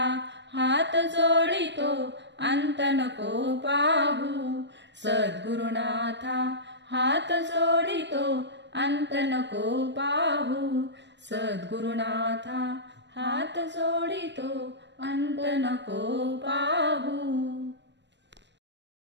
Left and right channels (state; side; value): late; left; 0.52 ms